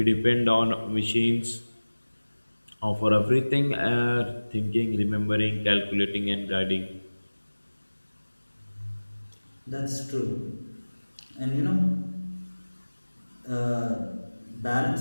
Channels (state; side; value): inverted; both; correlation -1.00